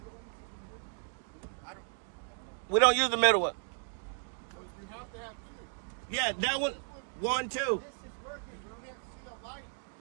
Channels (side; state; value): left; silent; 55 dB below the other